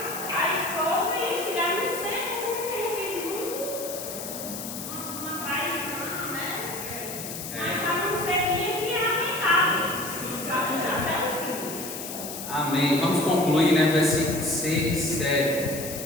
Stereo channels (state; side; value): noise; left; hiss, 8 dB below the sound